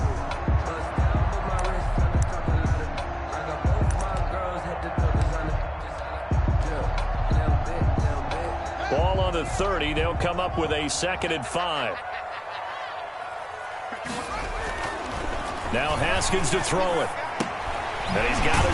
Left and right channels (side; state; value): both; identical; correlation 1.00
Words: Ball on the 30. They'll come up with a 2nd and 5. Now Haskins to throw it. And he's got